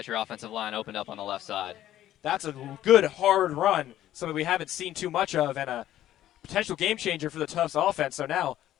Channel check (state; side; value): quieter; right; 12.8 dB